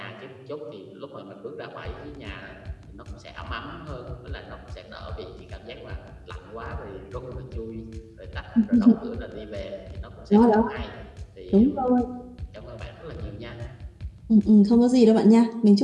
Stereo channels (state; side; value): identical; both; correlation 1.00